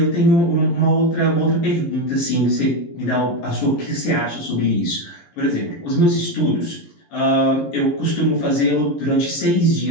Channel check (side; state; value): right; late; 11 ms